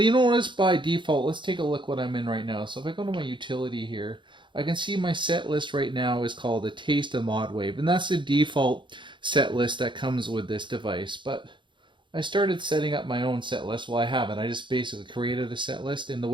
you know what is by default. Let's take a look what I'm in right now. So if I go to my utility here, I can see my set list right now is called a taste of modwave, and that's the default set list that comes with this device. But I started setting up my own set list. Well, I haven't. I just basically created a set list, and the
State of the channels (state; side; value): late; left; 0.23 ms